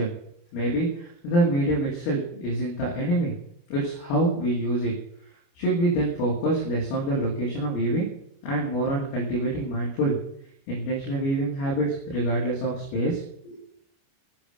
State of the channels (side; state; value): right; late; 30 ms